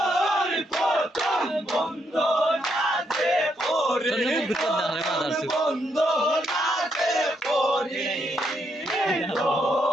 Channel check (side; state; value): both; normal; correlation 0.77